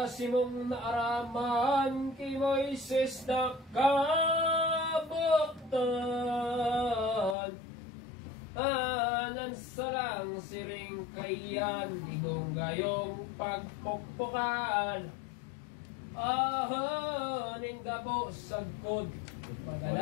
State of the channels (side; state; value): right; drops out; at 7.4 s